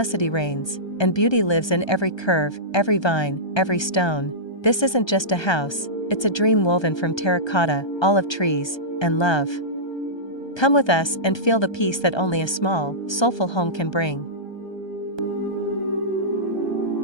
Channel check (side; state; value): right; late; 1.3 ms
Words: reigns, and beauty lives in every curve, every vine, every stone. This isn't just a house, it's a dream woven from terracotta, olive trees, and love. Come with us and feel the peace that only a small, soulful home can bring.